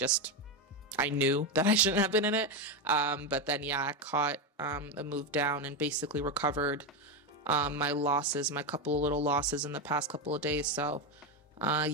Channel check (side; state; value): both; normal; correlation 0.11